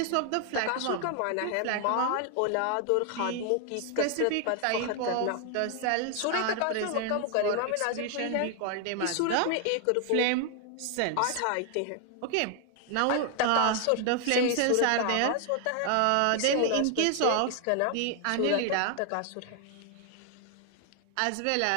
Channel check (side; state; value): both; different; correlation 0.00